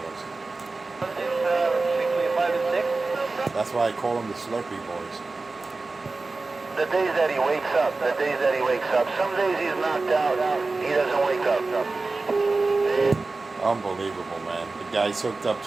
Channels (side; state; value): left; quieter; 3.6 dB